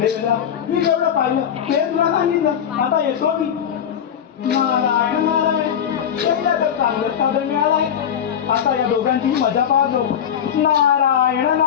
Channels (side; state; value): right; quieter; 8.7 dB